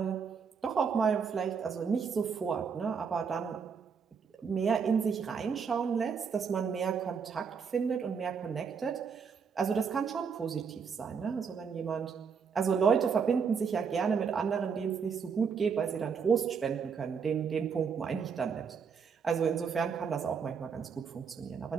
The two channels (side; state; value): left; quieter; 6.2 dB